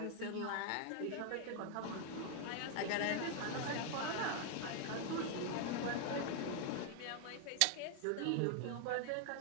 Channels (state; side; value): different; both; correlation 0.00